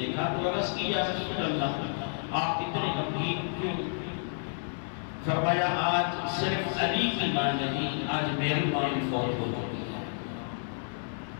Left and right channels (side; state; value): right; silent; digital silence